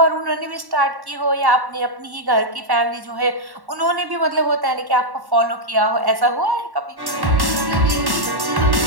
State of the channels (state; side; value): late; left; 1.1 ms